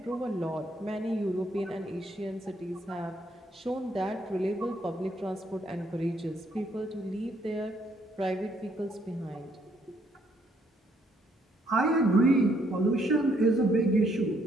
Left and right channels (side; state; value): both; normal; correlation 0.70